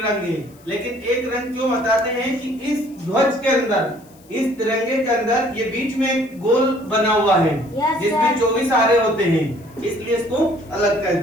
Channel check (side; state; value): left; noise; hiss, 28 dB below the sound